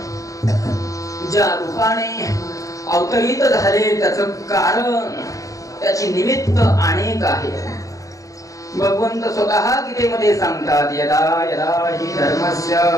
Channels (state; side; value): late; right; 0.16 ms